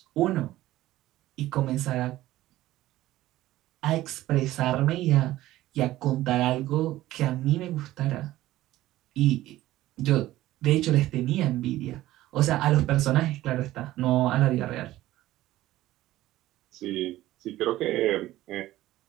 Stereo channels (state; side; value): quieter; left; 15.6 dB